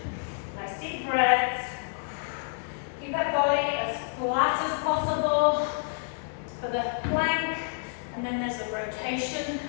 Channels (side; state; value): right; silent; digital silence